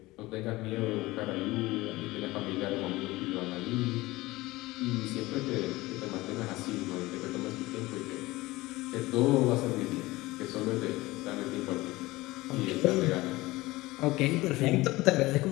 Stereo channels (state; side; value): quieter; right; 19.8 dB